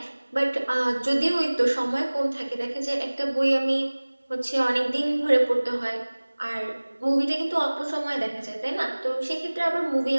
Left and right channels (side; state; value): both; inverted; correlation -1.00